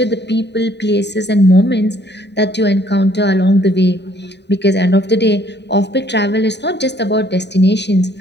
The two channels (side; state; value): right; late; 0.50 ms